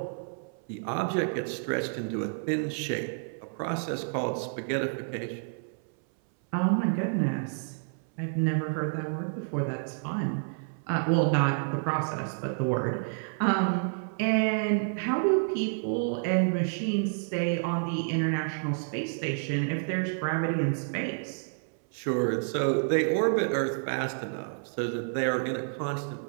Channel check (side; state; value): left; silent; 58 dB below the other